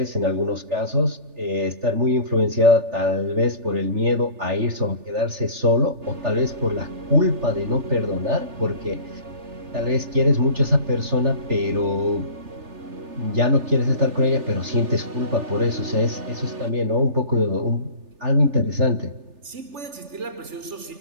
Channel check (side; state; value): left; late; 3.4 ms